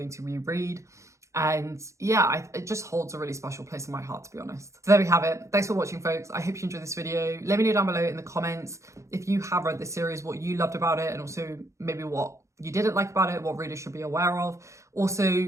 to reread. And yeah, it just holds a really special place in my heart, to be honest. So there we have it. Thanks for watching, folks. I hope you enjoyed this video. Let me know down below in the comments if you have read this series, what you loved about it, and also maybe what you didn't like about it, what readers should be aware of. Also,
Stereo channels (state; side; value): late; left; 0.14 ms